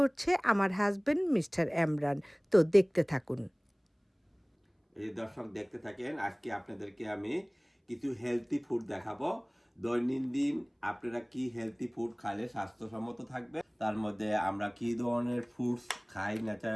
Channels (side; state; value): both; identical; correlation 1.00